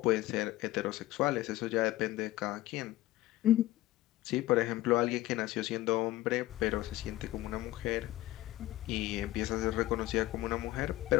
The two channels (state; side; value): quieter; right; 16.3 dB